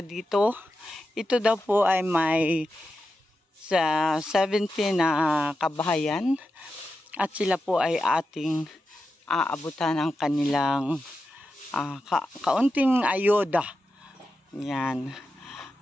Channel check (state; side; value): normal; both; correlation 0.89